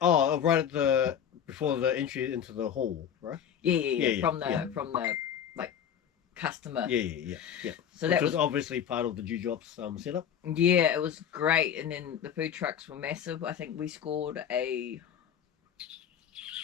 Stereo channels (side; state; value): right; quieter; 8.7 dB